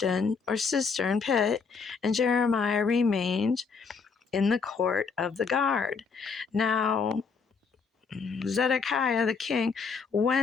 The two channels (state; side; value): quieter; right; 5.4 dB